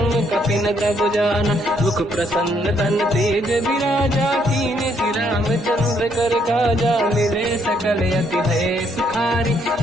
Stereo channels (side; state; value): both; normal; correlation 0.71